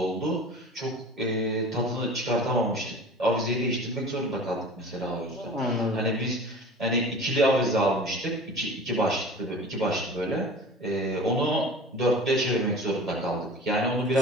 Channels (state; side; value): normal; both; correlation 0.39